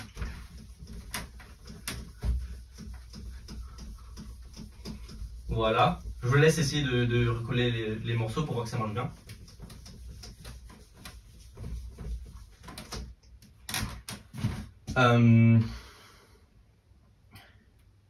Voilà. Je vous laisse essayer de recoller les morceaux pour voir que ça marche bien.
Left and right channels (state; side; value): identical; both; correlation 1.00